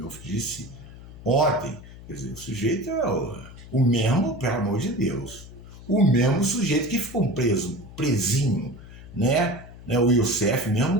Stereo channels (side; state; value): left; noise; hum, 17 dB below the sound